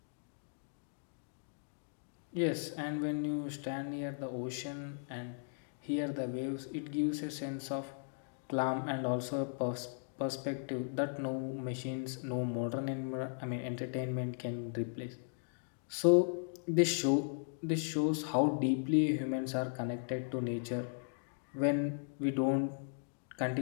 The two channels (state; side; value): silent; right; digital silence